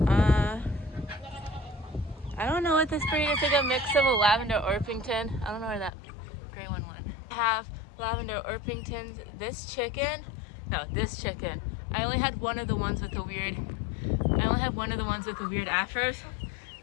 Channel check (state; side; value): drops out; right; at 5.9 s